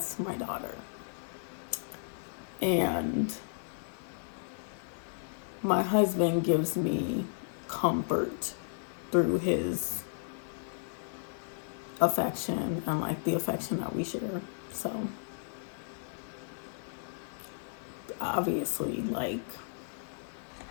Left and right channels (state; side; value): silent; right; 55 dB below the other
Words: my daughter. And my husband gives me comfort through his affection and like the affection that we share. So obviously, like,